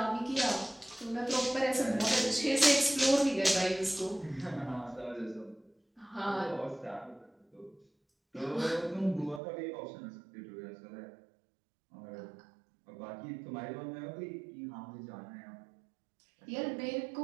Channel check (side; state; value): left; drops out; at 9.4 s